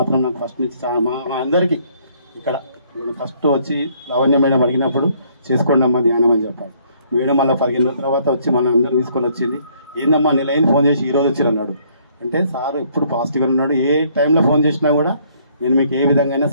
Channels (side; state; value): both; inverted; correlation -0.65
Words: నాకు ఫస్ట్ నుంచి మా అందరికీ ఇక్కడ ఫస్ట్ వచ్చి లావణ్య మేడం అడిగినప్పుడు చేసుకోండి అమ్మా ధ్యానం అని చెప్పారు. మేడం మళ్ళీ 15 రోజుల తర్వాత వచ్చి మన అందరూ తీసుకొని వచ్చింది. ఏందమ్మా నెలైన ఫోన్ చేసి ఈరోజు వచ్చారు అన్నాడు. అంటే సార్ ఎప్పుడు పాజిటివ్గా ఉన్నాడు. ఏ టైంలో ఫోన్ చేసినా కూడా నేను మీకు ఏ విధంగా